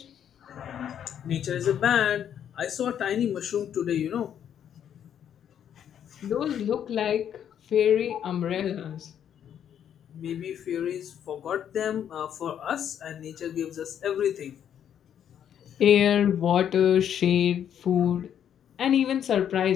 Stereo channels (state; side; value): quieter; right; 9.3 dB